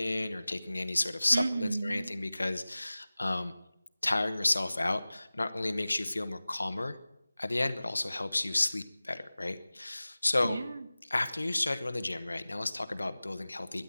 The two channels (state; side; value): inverted; both; correlation -0.98